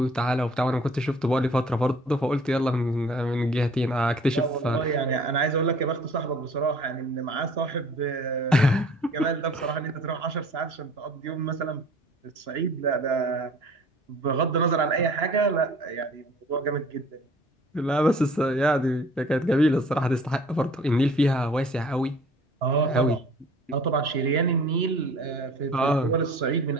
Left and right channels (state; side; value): normal; both; correlation 0.50